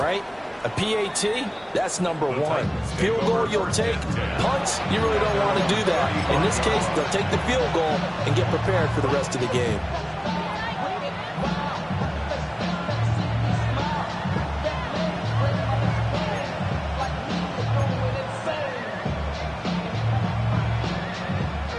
A PAT, that's number one. Field goal, you'll take. Punts, you really don't want to do that. In this case, they'll take the field goal and get prepared for the rest of the game.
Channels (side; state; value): both; identical; correlation 1.00